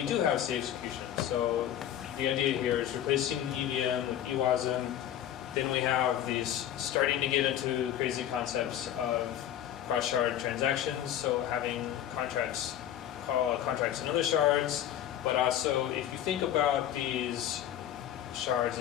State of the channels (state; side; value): quieter; right; 11.1 dB